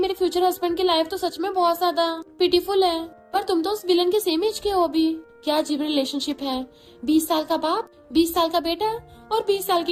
फ्यूचर हस्बैंड की लाइफ तो सच में बहुत ज्यादा पिटीफुल है, पर तुम तो उस विलन के सेम एज के हो अभी। क्या अजीब रिलेशनशिप है, 20 साल का बाप, 20 साल का बेटा और 20 साल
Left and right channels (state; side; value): identical; both; correlation 1.00